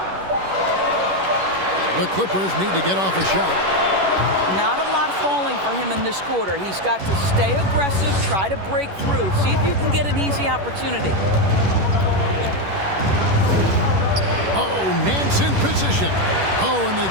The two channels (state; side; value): late; left; 11 ms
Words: The Clippers need to get off a shot. Not a lot falling for him in this quarter. He's got to stay aggressive, try to break through. See if you can get an easy opportunity. Oh, Nance in position. Oh, and they